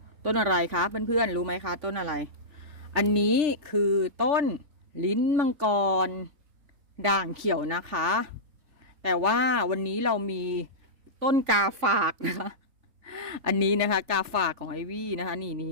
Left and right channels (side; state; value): left; late; 3.5 ms